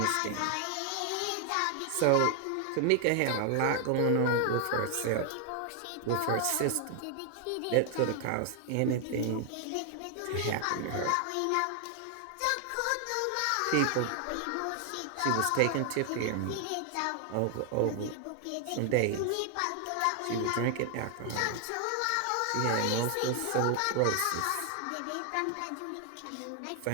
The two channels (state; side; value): different; both; correlation 0.00